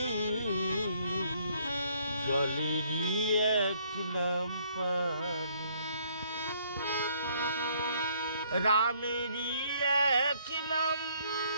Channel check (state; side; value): inverted; both; correlation -0.65